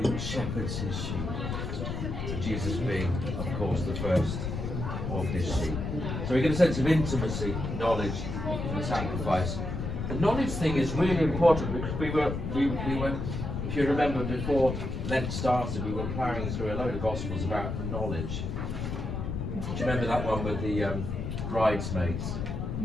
shepherds his sheep. And Jesus being, of course, the first of his sheep. So we get a sense of intimacy, knowledge, and sacrifice. The knowledge thing is really important because we were, if you remember before Lent started, we were plowing through a load of Gospels about knowledge. Do you remember that one with the bridesmaids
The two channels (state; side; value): noise; left; rumble, 4 dB below the sound